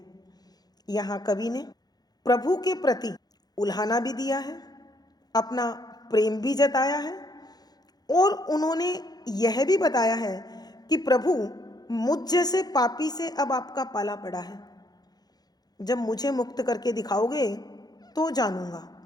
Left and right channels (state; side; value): late; right; 0.19 ms